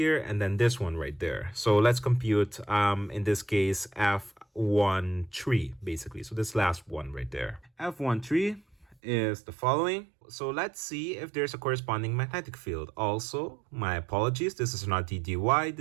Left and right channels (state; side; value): drops out; left; at 9.0 s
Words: and then this one right there. So let's compute, in this case, F13 basically. So this last one right there. F13 is the following. So let's see if there's a corresponding magnetic field. Also, my apologies, this is not ddy,